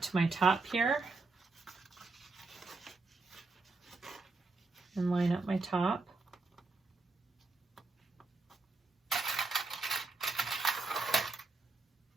to my top here and line up my top.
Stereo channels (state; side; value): quieter; left; 3.6 dB